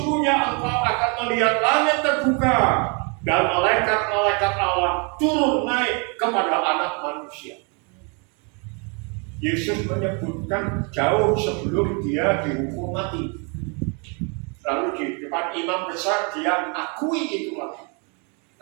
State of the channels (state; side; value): quieter; left; 34.9 dB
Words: engkau akan melihat langit terbuka dan malaikat-malaikat Allah turun naik kepada anak manusia. Yesus menyebutkan jauh sebelum dia dihukum mati. Lalu di depan imam besar dia akui itu lagi.